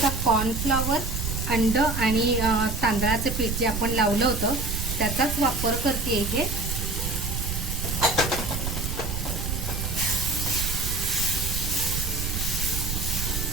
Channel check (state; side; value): noise; right; rumble, 3 dB below the sound